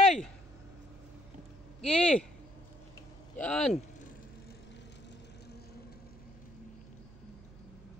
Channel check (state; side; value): noise; right; hum, 20 dB below the sound